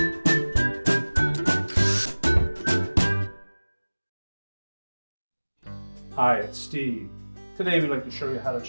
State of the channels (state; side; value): inverted; both; correlation -1.00